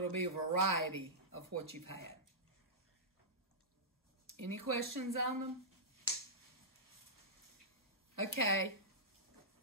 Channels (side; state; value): both; normal; correlation -0.15